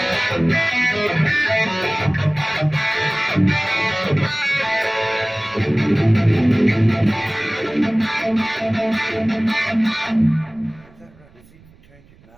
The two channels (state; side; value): noise; right; rumble, 27 dB below the sound